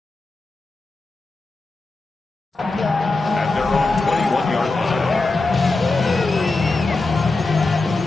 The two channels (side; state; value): right; quieter; 3.4 dB